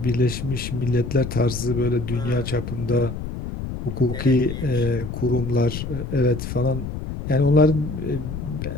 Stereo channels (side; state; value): left; noise; rumble, 7 dB below the sound